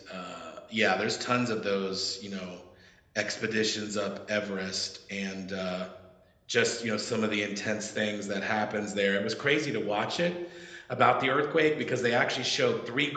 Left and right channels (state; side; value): identical; both; correlation 1.00